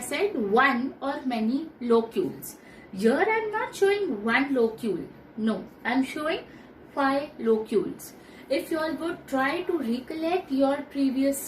one or many locules. Here I am not showing one locule. No, I am showing 5 locules. If you all would try to recollect your previous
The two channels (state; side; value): identical; both; correlation 1.00